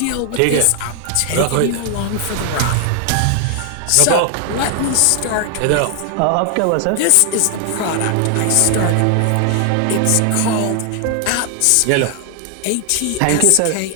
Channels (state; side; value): different; both; correlation 0.00